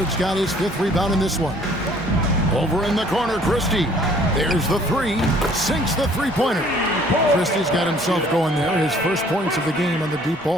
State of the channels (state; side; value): normal; both; correlation 0.57